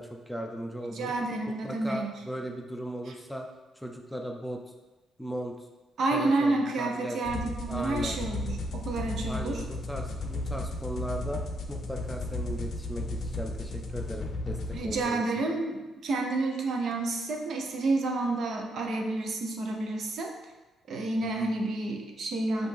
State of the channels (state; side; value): normal; both; correlation 0.77